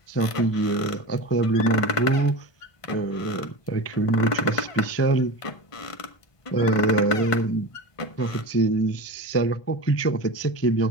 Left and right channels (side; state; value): right; late; 1.5 ms